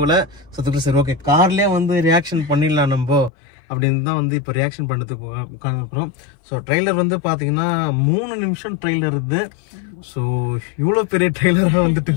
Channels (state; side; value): drops out; right; at 3.3 s